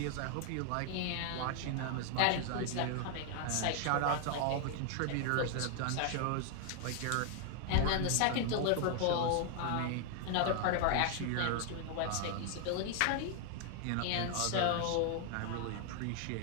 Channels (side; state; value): both; different; correlation 0.00